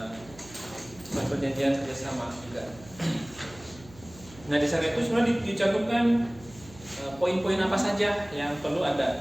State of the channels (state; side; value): noise; right; hum, 21 dB below the sound